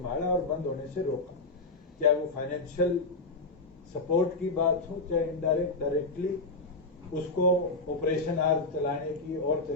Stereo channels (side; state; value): right; quieter; 3.3 dB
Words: और बंद होने से रोका। चाहे वो फाइनेंशियल सपोर्ट की बात हो, चाहे इनडायरेक्ट डायरेक्टली उसको ऑपरेशन आर चलाने की और